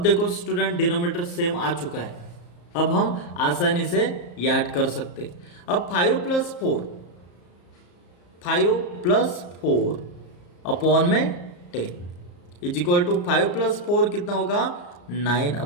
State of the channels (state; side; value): late; right; 34 ms